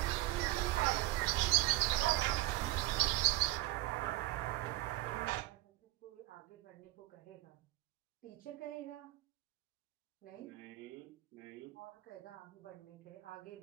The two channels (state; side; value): quieter; left; 17.8 dB